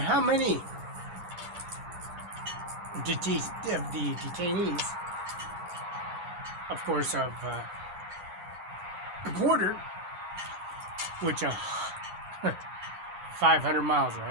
many of the detainees, of course, of the border, which 500 miles,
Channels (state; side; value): late; left; 9.8 ms